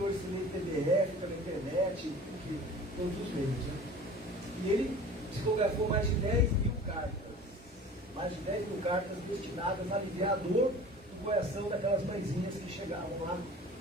hoje se lê em PDF, pela internet, todos os meios, né? E ele psicografou mais de 10 mil cartas. Mais de 10 mil cartas destinadas a aliviar a dor do coração daquelas mãezinhas que chegavam lá.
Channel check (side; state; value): both; normal; correlation 0.42